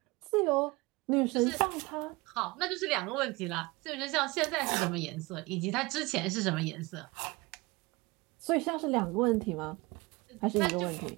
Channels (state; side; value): quieter; left; 23.6 dB